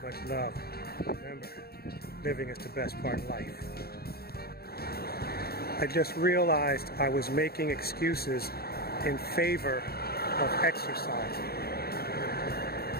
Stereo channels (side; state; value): right; late; 0.45 ms